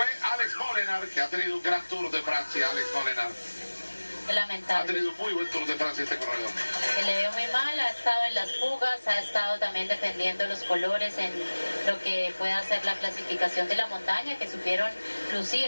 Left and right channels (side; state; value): both; inverted; correlation -1.00